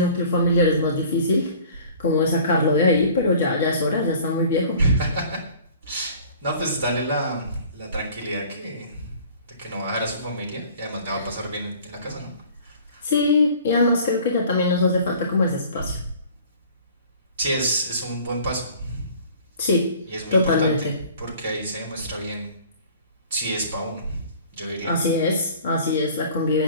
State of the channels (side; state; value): both; inverted; correlation -0.48